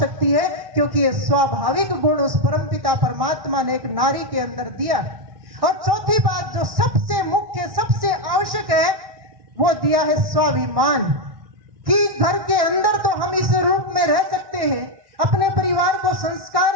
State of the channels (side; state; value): left; late; 1.1 ms